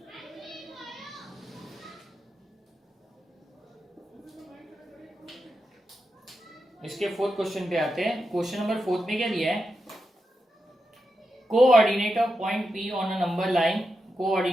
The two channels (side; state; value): both; normal; correlation 0.88